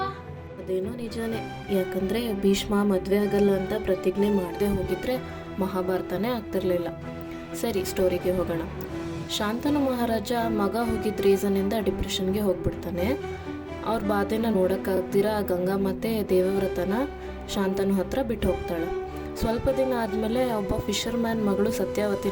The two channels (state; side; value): identical; both; correlation 1.00